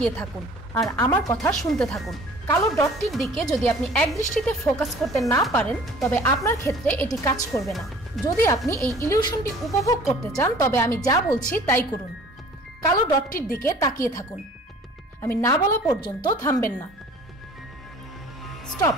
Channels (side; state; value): both; normal; correlation 0.49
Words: থাকুন আর আমার কথা শুনতে থাকুন। কালো ডটটির দিকে যদি আপনি এক দৃষ্টিতে ফোকাস করতে না পারেন, তবে আপনার ক্ষেত্রে এটি কাজ করবে না। যদি আপনি এই ইলিউশনটি উপভোগ করতে চান, তবে আমি যা বলছি তাই করুন। কালো ডটটির দিকে তাকিয়ে থাকুন। আমি না বলা পর্যন্ত থামবেন না। স্টপ।